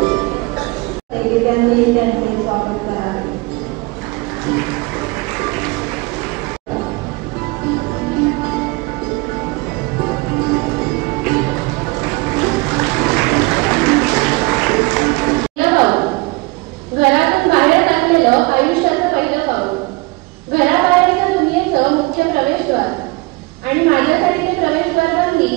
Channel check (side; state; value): left; quieter; 25.3 dB